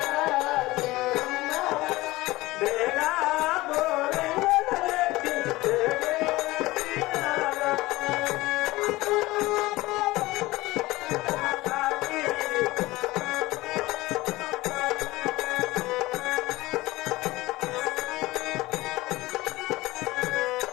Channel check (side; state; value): right; quieter; 19.4 dB